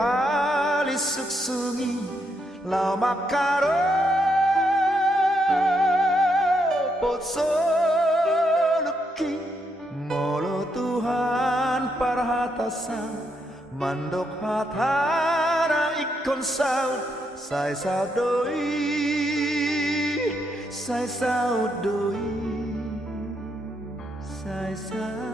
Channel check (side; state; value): both; normal; correlation 0.78